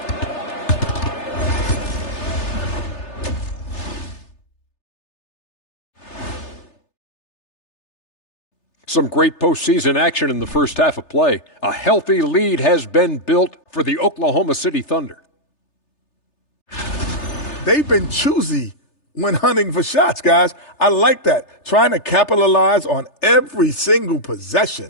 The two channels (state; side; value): late; right; 3.3 ms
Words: Some great postseason action in the first half of play. A healthy lead has been built for the Oklahoma City Thunder. They've been choosy when hunting for shots, guys. I like that. Trying to capitalize on every single